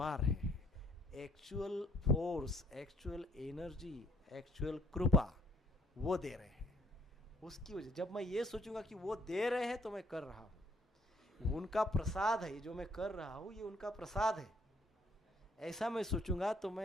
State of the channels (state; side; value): normal; both; correlation 0.64